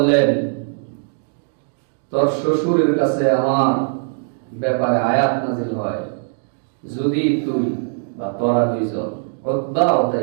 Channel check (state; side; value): silent; left; digital silence